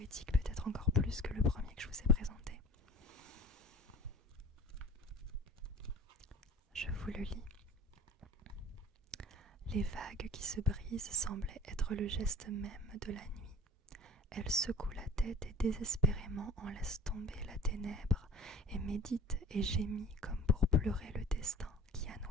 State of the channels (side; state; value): both; normal; correlation 0.40